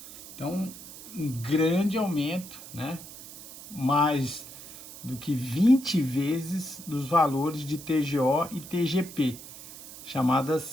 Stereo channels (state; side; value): noise; right; hiss, 15 dB below the sound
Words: Então, um grande aumento, né? Mais do que 20 vezes dos valores de TGO e TGP,